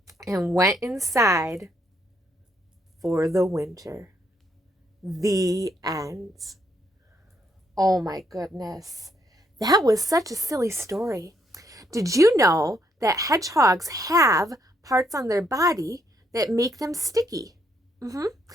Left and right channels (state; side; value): normal; both; correlation 0.73